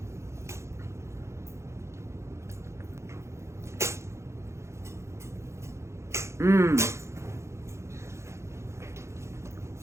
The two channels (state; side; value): late; left; 0.13 ms